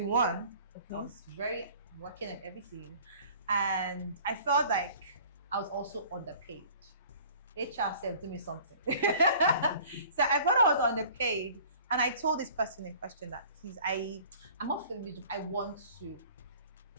one. I was very working at everything. And I felt like I was also underpaid. HR said, do me something. So I thought I was underpaid. And I told this person in question that, please, I'm not feeling this job. I want to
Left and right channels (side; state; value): both; inverted; correlation -0.48